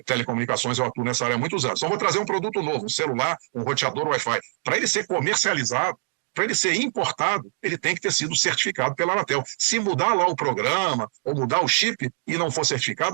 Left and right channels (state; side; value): silent; left; digital silence